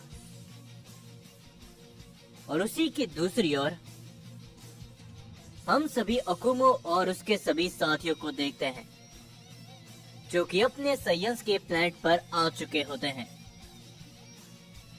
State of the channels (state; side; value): identical; both; correlation 1.00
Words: और उसी की दूसरी ओर हम सभी अकुमो और उसके सभी साथियों को देखते हैं, जो कि अपने साइंस के प्लेनेट पर आ चुके होते हैं।